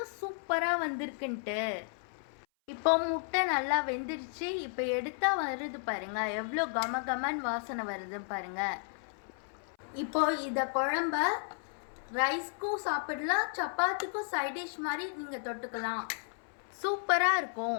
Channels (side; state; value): right; silent; 55 dB below the other